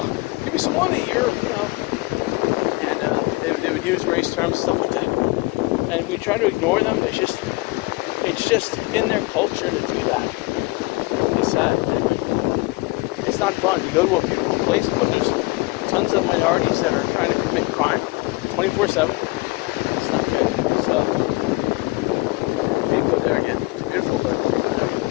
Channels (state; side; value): quieter; right; 23.5 dB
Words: give me some money, you know. And they would use race terms and stuff like that. And we try to ignore them. It's just in their culture to do that. It's sad. It's not fun. You go to a beautiful place, but there's tons of minorities that are trying to commit crime 24/7. It's not good. So go there again. Beautiful, but